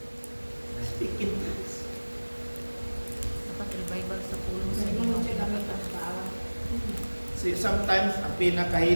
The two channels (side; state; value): both; inverted; correlation -1.00